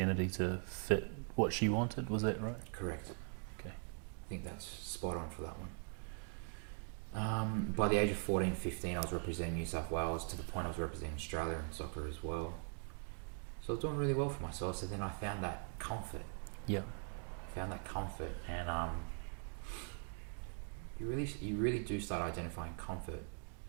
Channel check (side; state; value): left; silent; 50 dB below the other